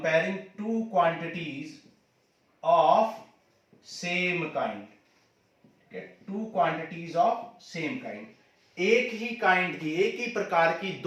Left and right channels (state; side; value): identical; both; correlation 1.00